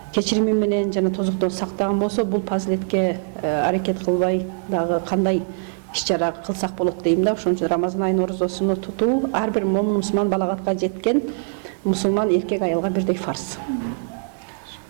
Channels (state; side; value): silent; left; digital silence